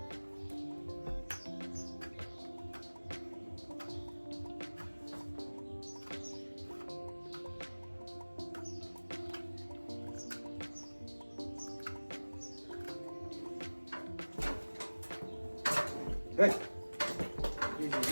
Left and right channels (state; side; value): inverted; both; correlation -1.00